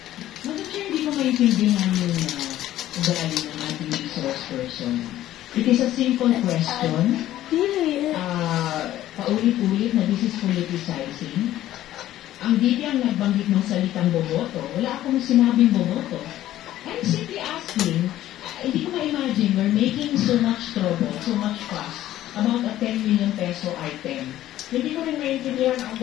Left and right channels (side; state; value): right; quieter; 13.6 dB